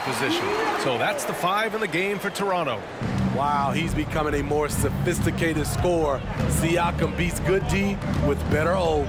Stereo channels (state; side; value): identical; both; correlation 1.00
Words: position. So that's the 5 in the game for Toronto. Wow, he's becoming a more sophisticated scorer. Siakam beats good D with better O.